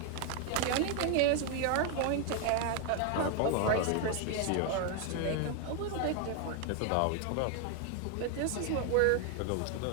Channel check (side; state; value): both; different; correlation 0.01